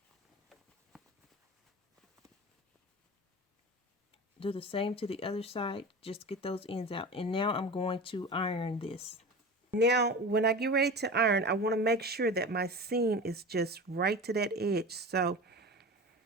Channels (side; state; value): both; normal; correlation 0.31